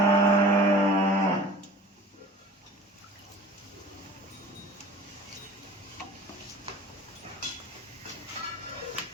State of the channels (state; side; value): normal; both; correlation 0.43